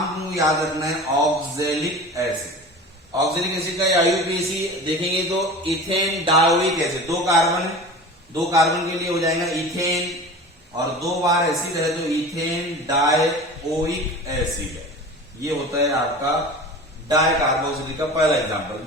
याद रखना है, ऑक्जेलिक एसिड। ऑक्जेलिक एसिड का IUPAC देखेंगे तो ethane dioic acid, 2 carbon, 2 carbon के लिए हो जाएगा इथेन, और 2 बार एसिड है तो इथेन डायोइक एसिड है। ये होता है आपका डाई कार्बोक्सिलिक का पहला एग्जांपल।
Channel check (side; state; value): both; normal; correlation 0.36